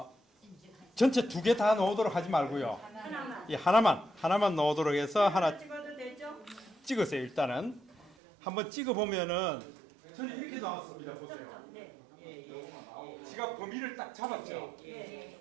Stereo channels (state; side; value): drops out; left; at 8.1 s